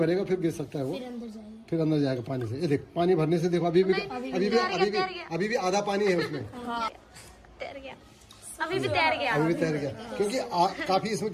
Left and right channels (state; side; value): identical; both; correlation 1.00